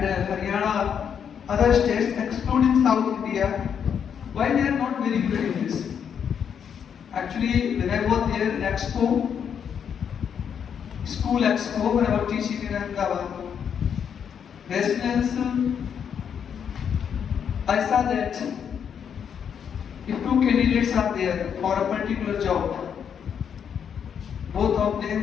Haryana, other states, excluding South India, why they are not very good in this? Actually, when I was there in Expo, school Expo, when I was teaching in Ahmedabad, residents, I saw that if two candidates are there for a particular job, both of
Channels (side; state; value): right; quieter; 7.8 dB